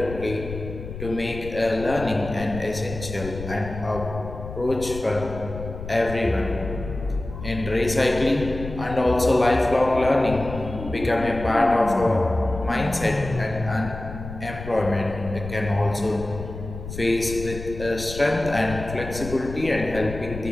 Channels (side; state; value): left; noise; rumble, 10 dB below the sound